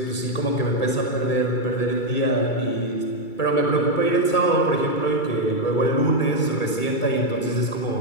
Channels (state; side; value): late; right; 2.3 ms